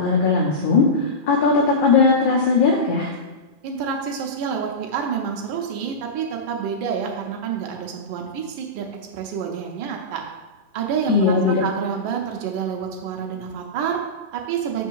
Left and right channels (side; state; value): right; late; 2.4 ms